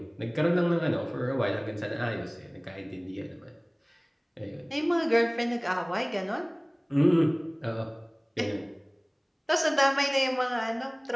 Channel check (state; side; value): identical; both; correlation 1.00